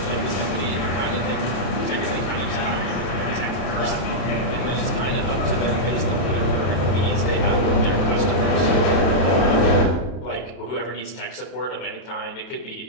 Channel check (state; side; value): late; right; 32 ms